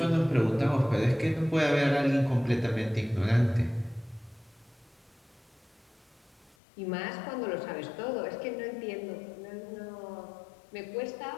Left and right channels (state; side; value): drops out; right; at 6.6 s